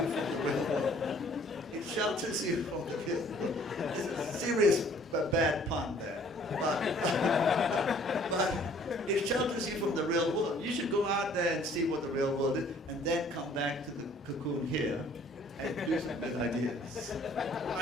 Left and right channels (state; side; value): normal; both; correlation 0.57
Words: the real world. It shelters you from the real world. It's a serious bad pun there. But it shelters you from the real world. You should go out there and see what the real world is, and then come back to the cocoon here and do some good ideas.